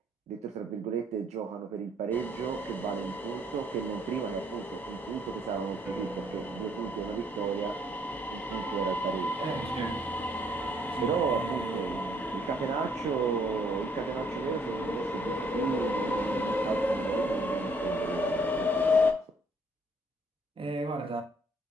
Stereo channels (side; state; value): both; normal; correlation 0.65